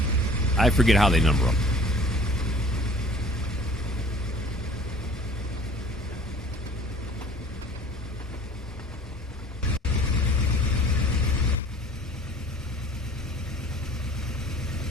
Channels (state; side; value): normal; both; correlation 0.49